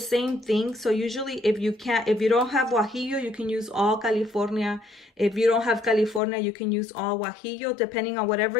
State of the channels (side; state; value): right; drops out; at 6.2 s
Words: thing. So usually if you don't have guajillo, you can use all California. If you don't have California, you can use all guajillo. Depending on whatever